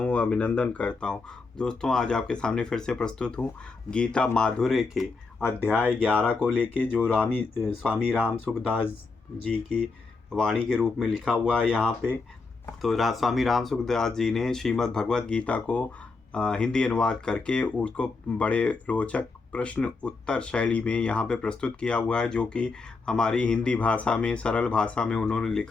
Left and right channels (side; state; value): right; quieter; 4.1 dB